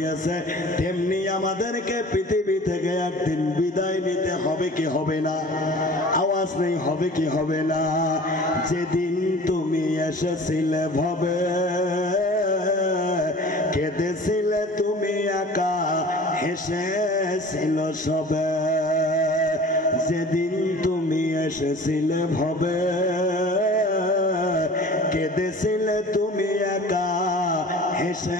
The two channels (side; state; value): both; normal; correlation 0.43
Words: তেমনি আমাদেরকে পৃথিবী থেকে একদিন বিদায় নিতে হবে কি হবে না? আওয়াজ নেই, হবে কি হবে না? যেদিন তুমি এসেছিলে ভবে, কেঁদেছিলে তুমি একা, হেসেছিল সবে। যেদিন তুমি এসেছিলে ভবে, কেঁদেছিলে তুমি একা,